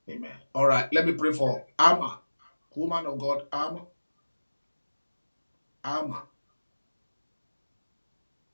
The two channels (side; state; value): both; inverted; correlation -1.00